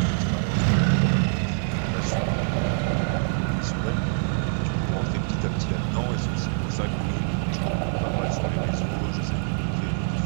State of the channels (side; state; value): left; silent; digital silence